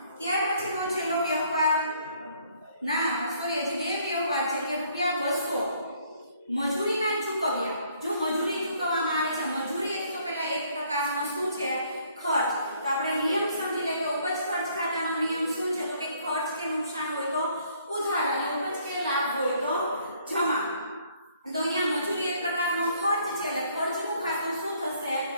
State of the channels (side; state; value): both; inverted; correlation -0.64